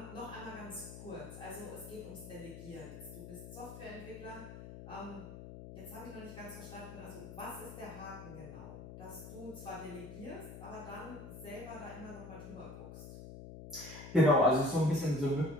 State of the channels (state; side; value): noise; left; hum, 11 dB below the sound